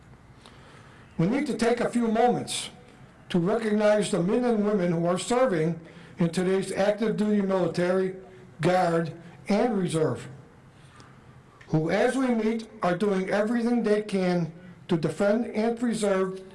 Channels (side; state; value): both; identical; correlation 1.00